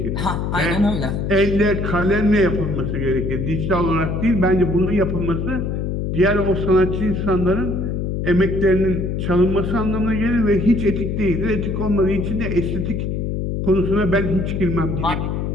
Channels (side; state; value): left; noise; hum, 2 dB below the sound